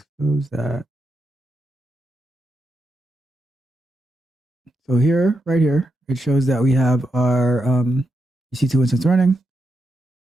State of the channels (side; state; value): both; normal; correlation 0.85